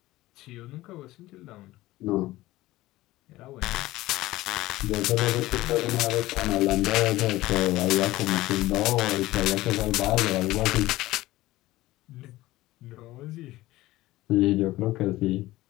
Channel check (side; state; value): right; quieter; 17.4 dB